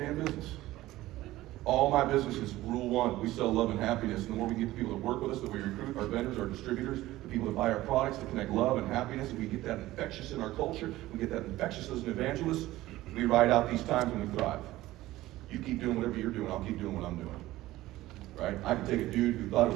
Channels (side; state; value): left; quieter; 16.6 dB